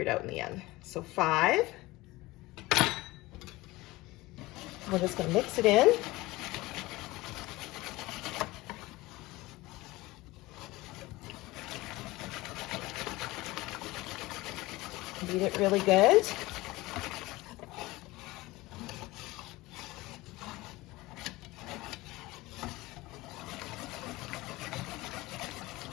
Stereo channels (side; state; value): right; quieter; 20.1 dB